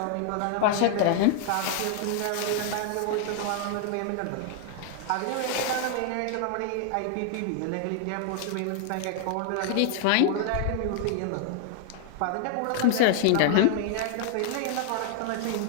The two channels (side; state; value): both; different; correlation 0.00